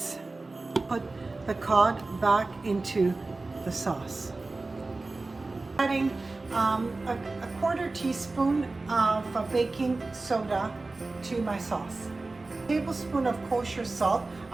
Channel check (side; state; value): left; quieter; 3.4 dB